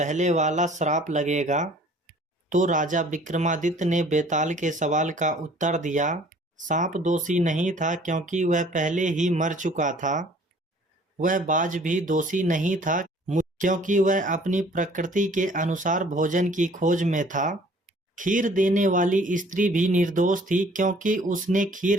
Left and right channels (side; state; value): both; normal; correlation 0.54